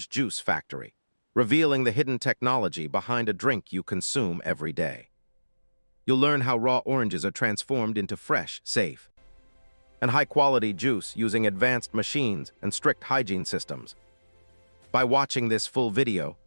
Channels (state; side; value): inverted; both; correlation -1.00